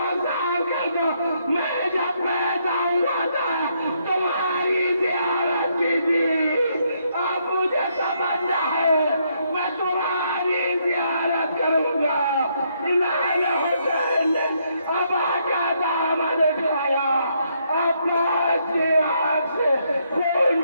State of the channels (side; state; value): both; inverted; correlation -0.74